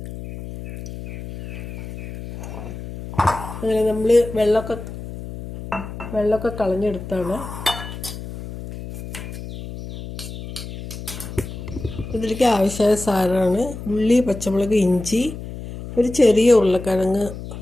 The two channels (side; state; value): left; noise; hum, 10 dB below the sound